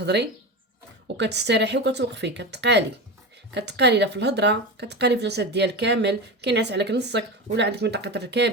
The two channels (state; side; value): normal; both; correlation 0.23